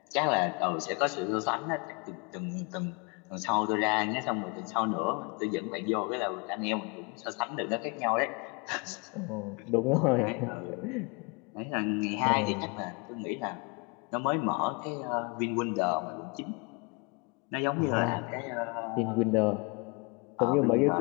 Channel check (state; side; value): quieter; right; 31.1 dB